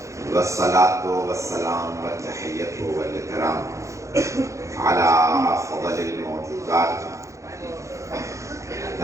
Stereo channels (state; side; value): late; left; 0.15 ms